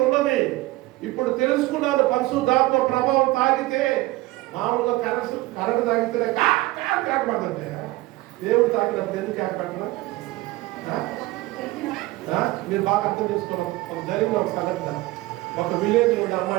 ఉన్నది. ఇప్పుడు తెలుసుకున్నాను. పరిశుద్ధాత్మ ప్రభావం తాగితే మామూలుగా కరెంట్ తాగితేనే కాక పడుతుంటే దేవుడు తాగినప్పుడు ఎందుకు కాక పట్టరా? మీరు బాగా అర్థం చేసుకోవాలి. ఒక జరిగిన ఒక సంఘటన, ఒక విలేజ్లో ఉన్న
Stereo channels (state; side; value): quieter; left; 19.5 dB